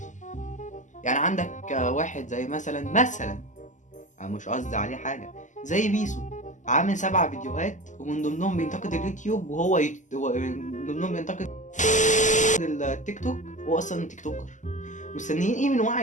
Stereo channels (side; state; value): right; late; 0.36 ms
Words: يعني عندك واحد زي مثلا انا مش قصدي عليه حاجه، زي بيسو، عامل 7 فيديوهات ومن ضمنهم بينتقد اليوتيوب، وهو من ضمنهم بينتقد التيك توك، هو اصلا تيك توكر. مستنيين ايه من